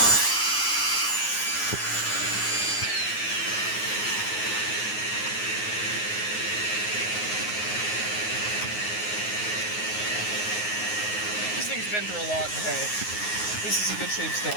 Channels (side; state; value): right; late; 9.5 ms